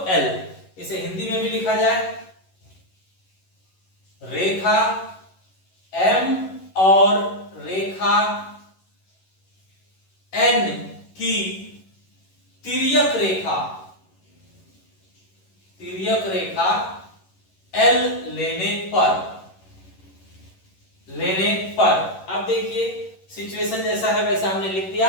L। इसे हिंदी में भी लिखा जाए, रेखा M और रेखा N की तिर्यक रेखा L लेने पर अब देखिए, सिचुएशन जैसा है वैसा हमने लिख दिया।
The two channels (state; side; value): late; right; 11 ms